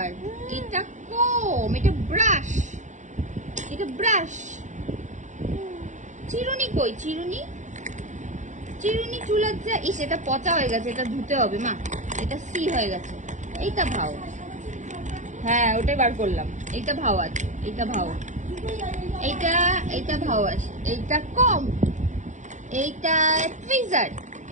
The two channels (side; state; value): left; late; 0.35 ms